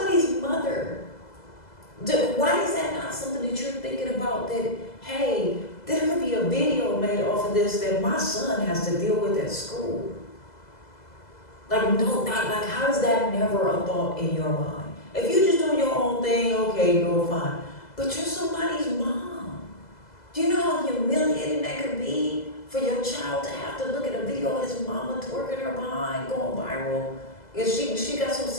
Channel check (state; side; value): late; right; 2.0 ms